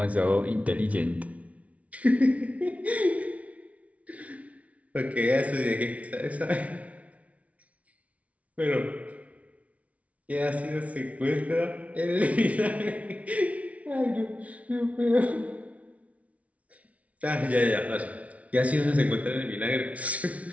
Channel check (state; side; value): late; left; 0.066 ms